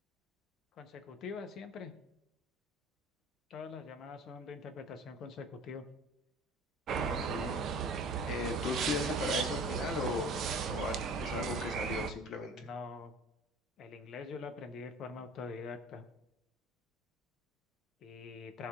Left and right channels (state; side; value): normal; both; correlation 0.44